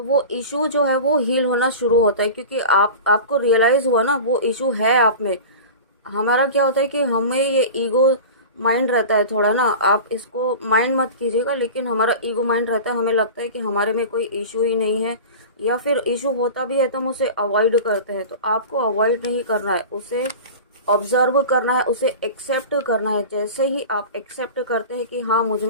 वो इशू जो है वो हील होना शुरू होता है, क्योंकि आपको रियलाइज़ हुआ ना वो इशू है आप में। हमारा क्या होता है कि हमें ये ईगो माइंड रहता है थोड़ा ना, आप इसको माइंड मत कीजिएगा, लेकिन हमारा ईगो माइंड रहता है, हमें लगता है कि हमारे में कोई इशू ही नहीं है, या फिर इशू होता भी है तो हम उसे अवॉइड करते हैं। तो आपको अवॉइड नहीं करना है, उसे ऑब्जर्व करना है, उसे एक्सेप्ट करना है। जैसे ही आप एक्सेप्ट करते हैं कि हाँ मुझ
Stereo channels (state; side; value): inverted; both; correlation -0.34